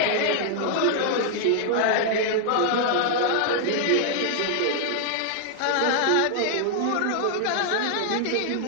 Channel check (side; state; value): both; different; correlation -0.01